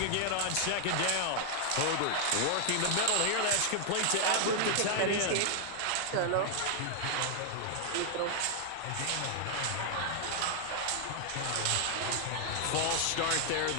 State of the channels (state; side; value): different; both; correlation 0.00